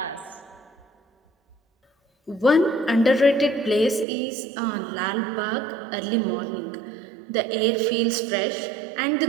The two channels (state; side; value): drops out; left; at 4.0 s